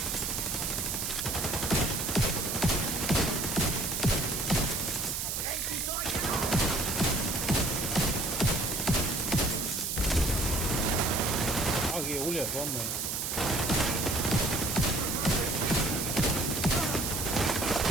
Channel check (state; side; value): noise; right; hiss, 2 dB below the sound